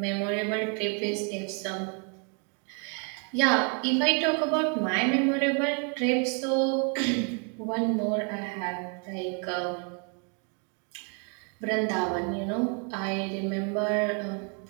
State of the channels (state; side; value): quieter; left; 38.6 dB